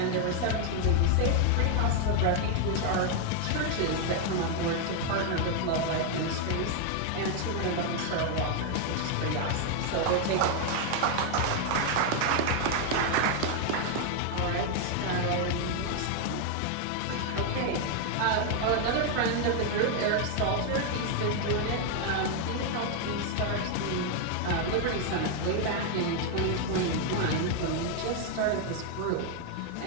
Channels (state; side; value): different; both; correlation 0.00